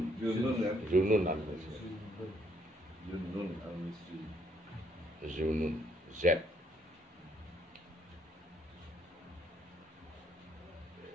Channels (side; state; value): both; normal; correlation 0.69